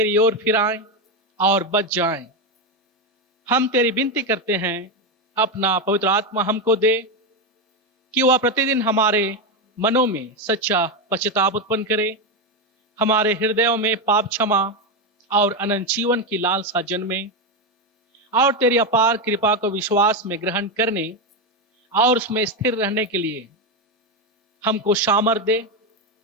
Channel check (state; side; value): normal; both; correlation 0.10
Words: ओर फिराएं और बच जाएं। हम तेरी विनती करते हैं, अपना पवित्र आत्मा हमको दे कि वह प्रतिदिन हमारे मनों में सच्चा पश्चाताप उत्पन्न करे, हमारे हृदयों में पाप क्षमा और अनंत जीवन की लालसा जन्मे, और तेरी अपार कृपा को विश्वास में ग्रहण करने और उसमें स्थिर रहने के लिए हमको सामर्थ दे।